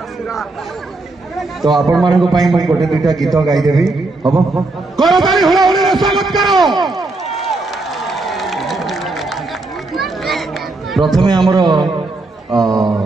तो आपण मानक गोटे दुईटा गीत गाईदेवी हम प्रथमे आमर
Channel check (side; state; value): left; quieter; 3.2 dB